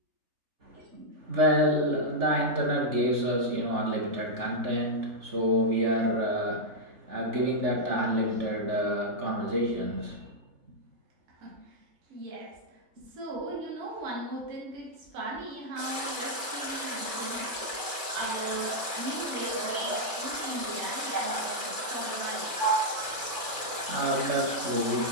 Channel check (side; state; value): left; late; 3.4 ms